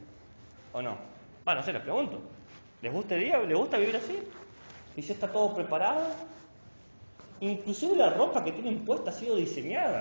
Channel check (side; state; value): both; inverted; correlation -1.00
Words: ¿O no? Bueno, no sé, les pregunto. ¿Les gusta el día? ¿Les gusta vivir así? ¿Y ya está todo preparado? Inclusive la ropa que tienen puesta ha sido